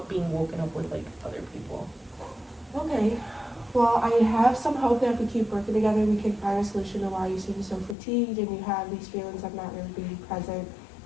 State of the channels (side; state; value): right; drops out; at 8.0 s